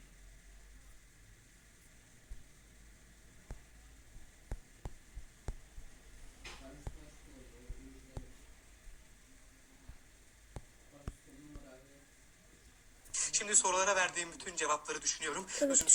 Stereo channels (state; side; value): identical; both; correlation 1.00